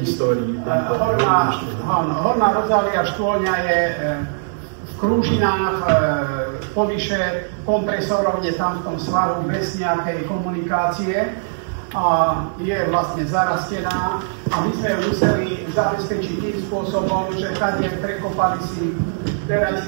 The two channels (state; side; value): silent; left; digital silence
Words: histórii. Horná rozhľadka škôlňa je v Krúžinách, povyše kompresorov je tam v tom svaru bez nejakej komunikácie a je vlastne zarastená a my sme ju museli zabezpečiť tým spôsobom, že tady prekopali si